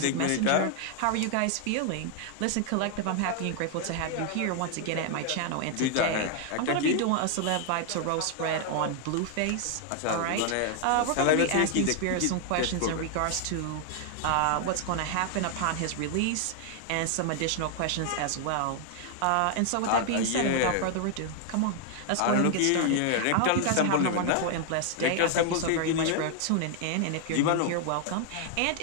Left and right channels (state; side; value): different; both; correlation 0.00